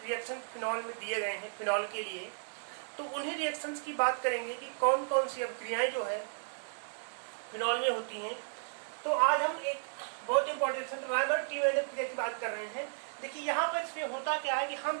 रिएक्शन फिनॉल में दिए गए हैं फिनॉल के लिए, तो उन्हीं रिएक्शंस की बात करेंगे कि कौन कौन सी अभिक्रियाएं जो है फिनॉल में होती हैं। तो आज हम एक बहुत इंपॉर्टेंट राइमर-टीमैन अभिक्रिया की बात कर रहे हैं। देखिए यहाँ पर इसमें होता क्या है कि हम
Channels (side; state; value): left; silent; digital silence